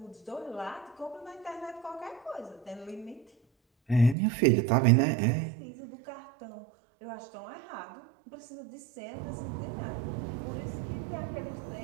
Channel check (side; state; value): left; drops out; at 4.2 s